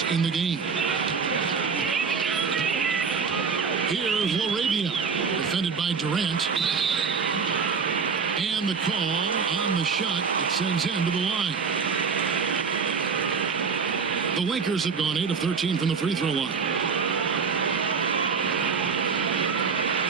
in the game. Here's Laravia, defended by Durant. And the call on the shot that sends him to the line. The Lakers have gone 8 of 13 from the free throw line.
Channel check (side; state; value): left; quieter; 5.6 dB